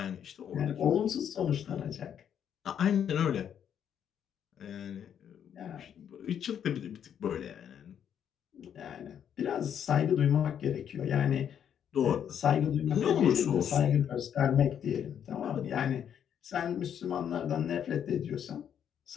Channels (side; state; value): right; quieter; 8.9 dB